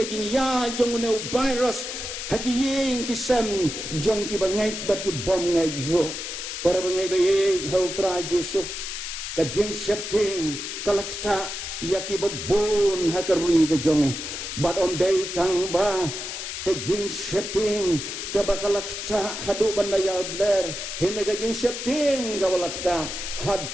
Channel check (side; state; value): left; noise; hiss, 6 dB below the sound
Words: jing ya jong ne virus hakiyeng kisam jong ki bangai bat ki bom ngai ro para bengai be hau trai Jesu ka jing shepting kalakta yaki babon hakari ke jonge but on day tang ba ke jing setting ke bakalakta hadu bandaya bler hene ke jing setting ke balakta